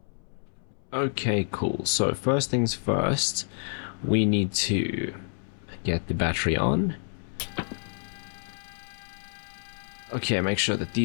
Okay, cool. So first things first, we need to get the battery on. Okay, make sure that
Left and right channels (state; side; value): silent; right; 59 dB below the other